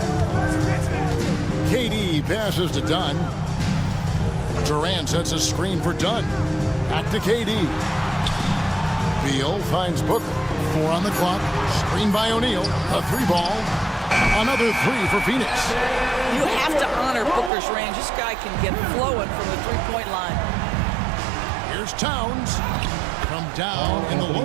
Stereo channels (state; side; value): drops out; left; at 17.5 s